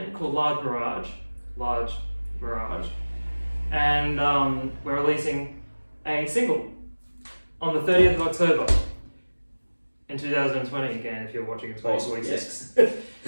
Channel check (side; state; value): both; inverted; correlation -1.00